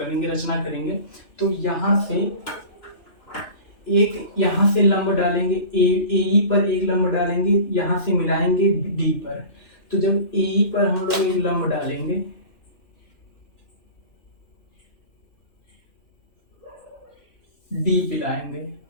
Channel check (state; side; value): late; right; 2.9 ms